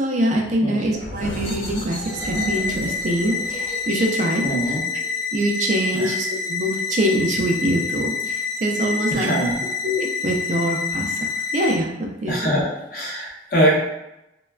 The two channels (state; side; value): normal; both; correlation 0.40